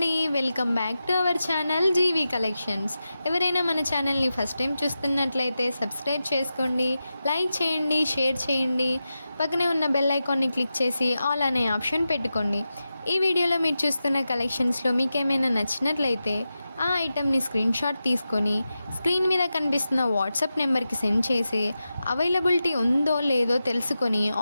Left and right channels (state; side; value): inverted; both; correlation -0.92